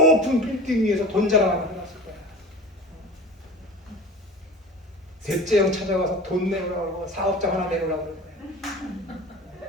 빌딩 위에서 돈 자랑을 해놨을 거야. 셋째 형 찾아가서 돈 내놓으라고 그러고 사업장 하나 내놓으라고 그럴 거야.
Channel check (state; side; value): normal; both; correlation 0.36